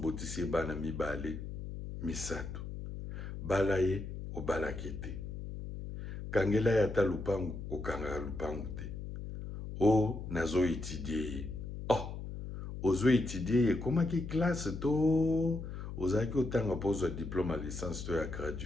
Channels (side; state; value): left; noise; hum, 8 dB below the sound